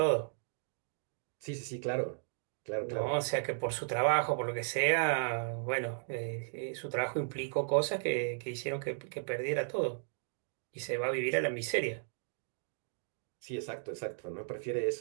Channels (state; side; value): silent; left; digital silence